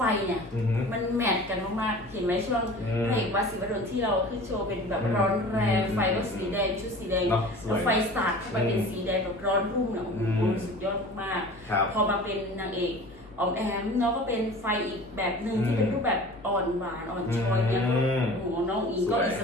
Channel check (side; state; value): both; normal; correlation 0.40